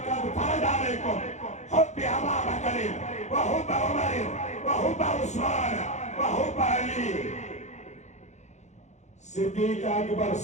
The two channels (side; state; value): right; late; 0.33 ms